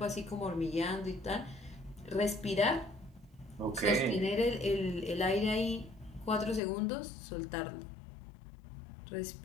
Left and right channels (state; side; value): drops out; right; at 6.6 s